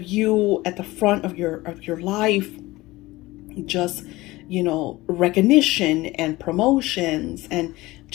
you at the front of your life, just recognition and promotions, and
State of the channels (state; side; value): quieter; right; 19.6 dB